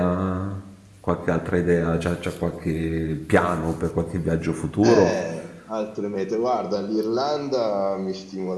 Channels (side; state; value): both; identical; correlation 1.00